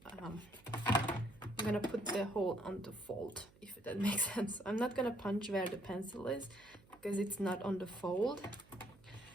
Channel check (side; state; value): right; noise; hum, 26 dB below the sound